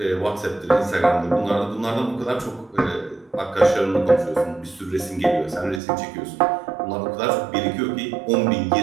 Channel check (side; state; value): left; drops out; at 5.8 s